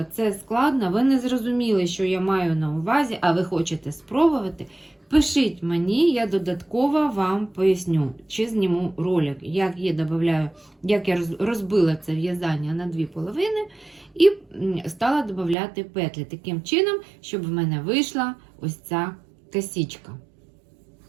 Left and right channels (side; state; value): left; drops out; at 15.6 s